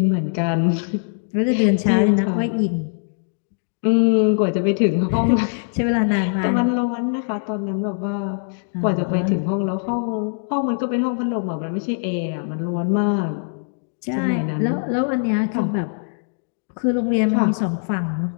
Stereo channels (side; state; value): right; silent; digital silence